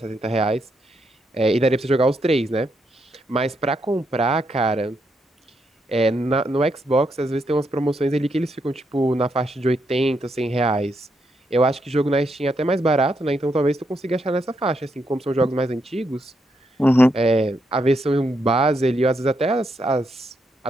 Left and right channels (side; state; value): both; normal; correlation 0.79